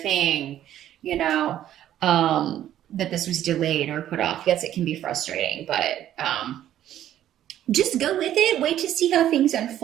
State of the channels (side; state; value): left; quieter; 11.8 dB